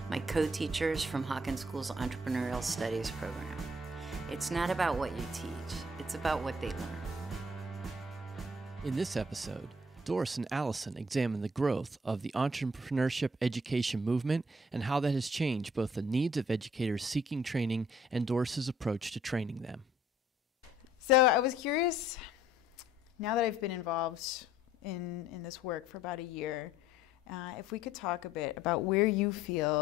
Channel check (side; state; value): both; normal; correlation 0.60